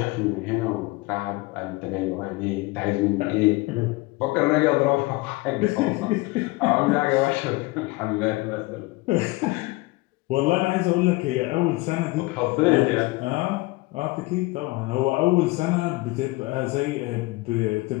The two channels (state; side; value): quieter; right; 22.6 dB